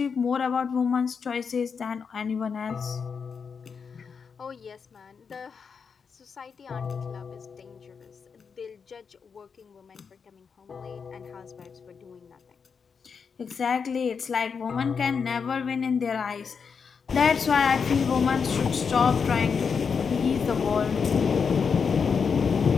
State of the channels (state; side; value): quieter; right; 6.0 dB